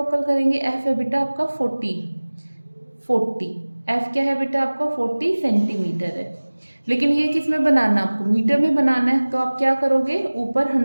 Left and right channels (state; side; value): inverted; both; correlation -1.00